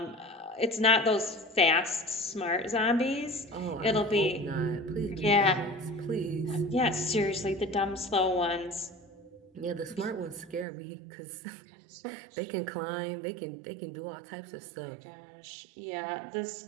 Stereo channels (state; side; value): drops out; left; at 10.7 s